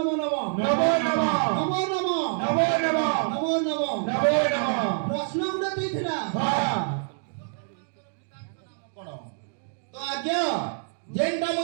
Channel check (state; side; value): silent; left; digital silence